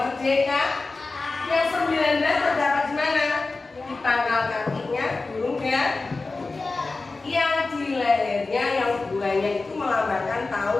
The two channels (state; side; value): quieter; right; 3.6 dB